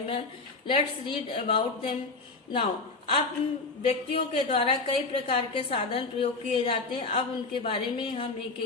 man. Let's read about them now. अब व्यक्तियों के द्वारा कई प्रकार के साधन प्रयोग किए जाते हैं. अब उनके बारे में हम एक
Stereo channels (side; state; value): right; quieter; 3.8 dB